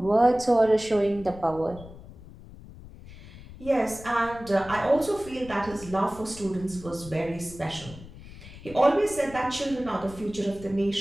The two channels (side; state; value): left; noise; rumble, 17 dB below the sound